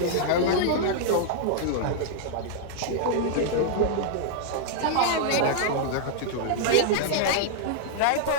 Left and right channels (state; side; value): different; both; correlation -0.01